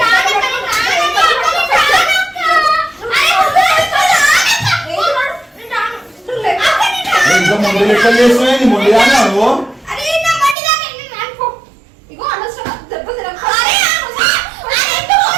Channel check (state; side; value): drops out; left; at 10.6 s